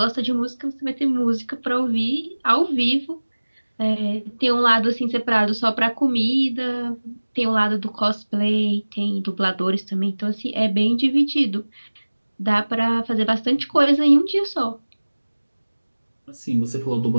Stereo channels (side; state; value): both; inverted; correlation -1.00